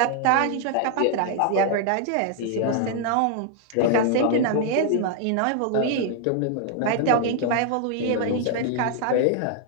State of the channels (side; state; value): both; different; correlation 0.00